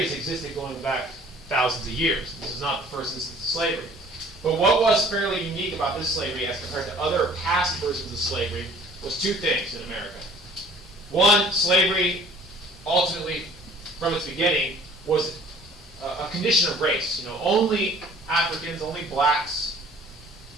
has existed going back thousands of years. This is not the first instance of slavery. But what was fairly unique about this slavery as compared to other past versions of slavery was two things in America. One, slavery, ultimately, from its beginning, was a condition of race. Only Africans, only blacks,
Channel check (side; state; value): both; normal; correlation 0.52